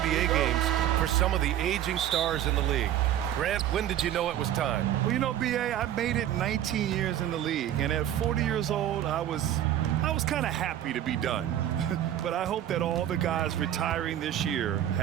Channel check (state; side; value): quieter; left; 11.5 dB